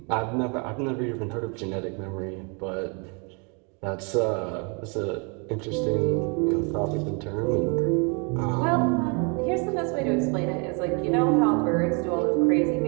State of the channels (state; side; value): quieter; left; 34.6 dB